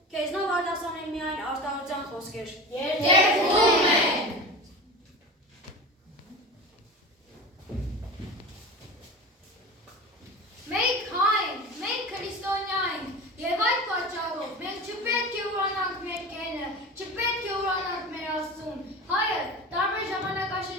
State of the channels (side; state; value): both; normal; correlation 0.31